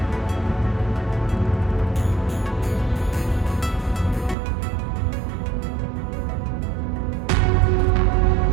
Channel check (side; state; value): left; drops out; at 4.4 s